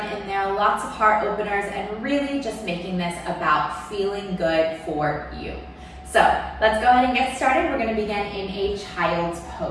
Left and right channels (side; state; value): both; identical; correlation 1.00